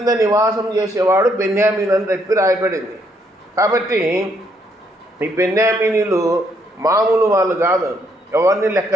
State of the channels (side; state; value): both; normal; correlation 0.72